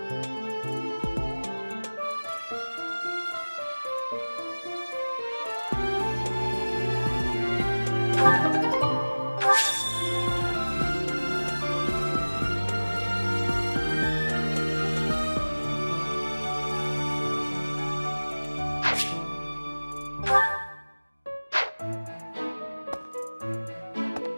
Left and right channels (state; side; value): inverted; both; correlation -1.00